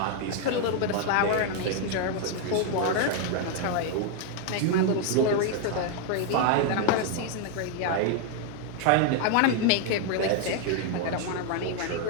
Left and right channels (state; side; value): different; both; correlation 0.01